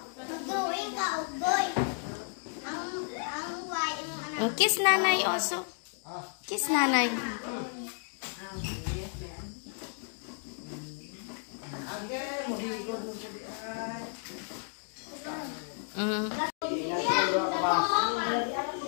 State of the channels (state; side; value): silent; right; 56 dB below the other